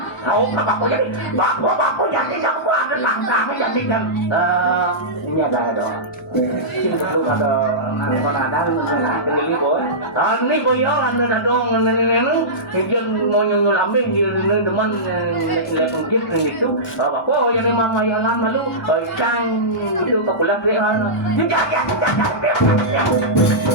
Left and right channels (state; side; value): normal; both; correlation -0.16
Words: kau bapo jadi bapo jadi yang buat langkah jadi kan ini ada itu ada ini boy ini boy ada dong ini mau nyusul ambing di teman lepas gitu bapo yang mama yang lama lu cang itu kapulah dia